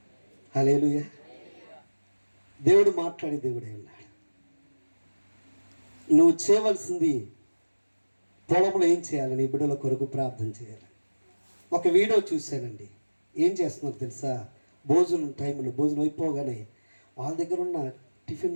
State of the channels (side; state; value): both; inverted; correlation -1.00